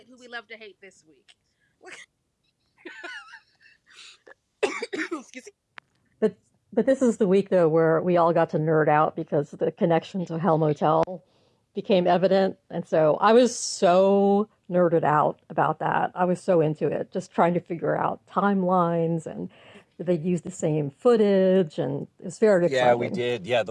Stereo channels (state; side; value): identical; both; correlation 1.00